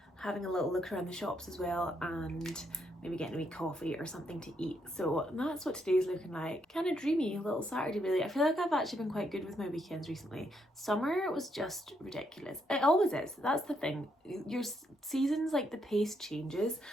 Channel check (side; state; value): both; normal; correlation 0.76